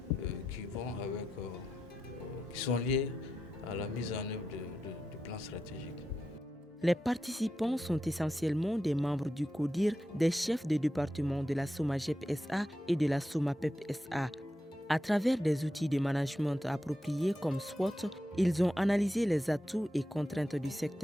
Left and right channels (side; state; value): both; normal; correlation 0.88